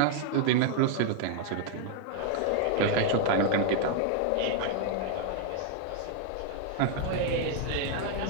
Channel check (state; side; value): different; both; correlation 0.00